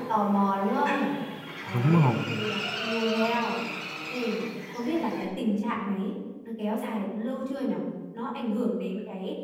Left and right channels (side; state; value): both; identical; correlation 1.00